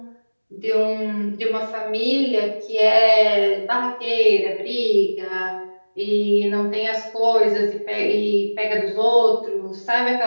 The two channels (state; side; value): inverted; both; correlation -1.00